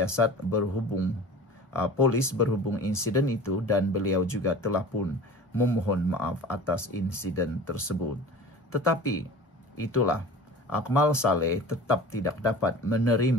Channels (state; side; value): normal; both; correlation 0.39